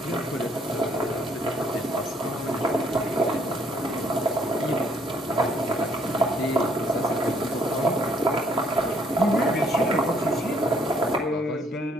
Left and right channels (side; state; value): both; normal; correlation 0.66